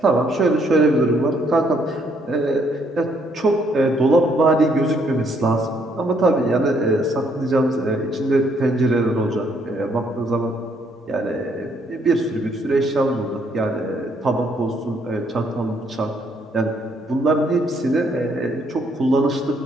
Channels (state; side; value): normal; both; correlation 0.69